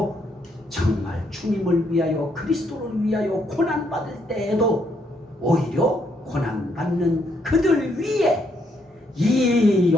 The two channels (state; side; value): normal; both; correlation 0.74